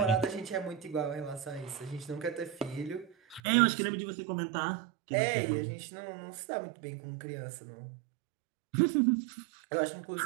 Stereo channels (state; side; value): drops out; left; at 3.4 s